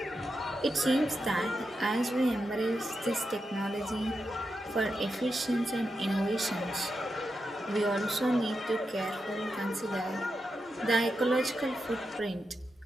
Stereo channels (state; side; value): normal; both; correlation 0.87